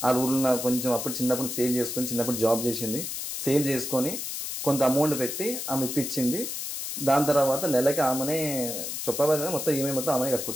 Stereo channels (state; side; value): noise; left; hiss, 5 dB below the sound